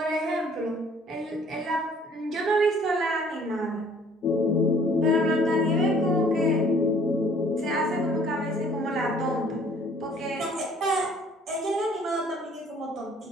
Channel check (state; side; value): normal; both; correlation 0.56